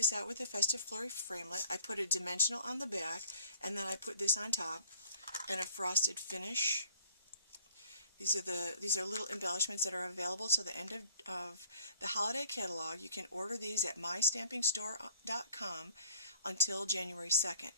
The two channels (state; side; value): inverted; both; correlation -0.56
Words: out with a Festive Flurry framelit. I put a dimensional on the back, and then I put this on top, and a frosted finish. These are little embellishments that are available to the end of the holiday catalog. You can order these at mystampingstore.com until January 2nd.